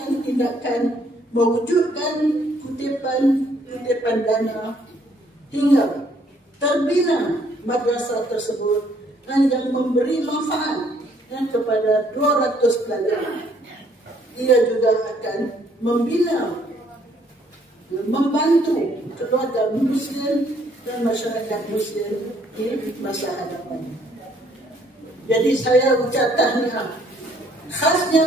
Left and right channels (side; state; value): both; normal; correlation 0.65